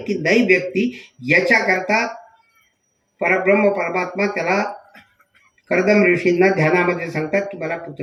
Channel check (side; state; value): both; identical; correlation 1.00